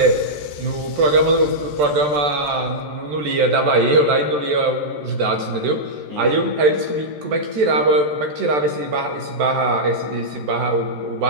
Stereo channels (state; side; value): late; left; 14 ms